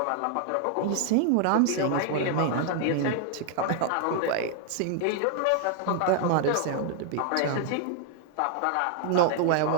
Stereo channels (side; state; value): both; different; correlation 0.00